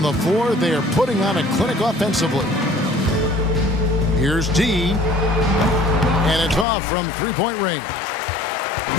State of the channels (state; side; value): drops out; right; at 6.7 s